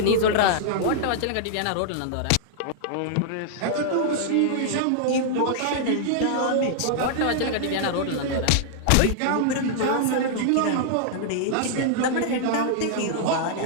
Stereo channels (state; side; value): different; both; correlation -0.01